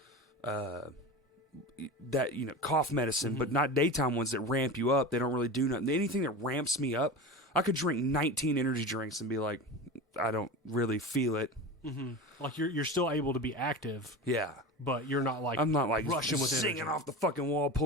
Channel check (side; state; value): both; normal; correlation 0.28